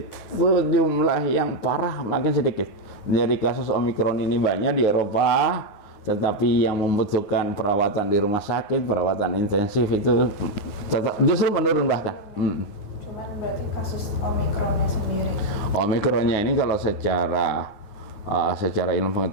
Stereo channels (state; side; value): late; right; 9.6 ms